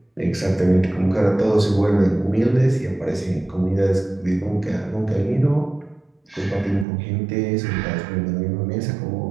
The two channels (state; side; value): drops out; left; at 6.9 s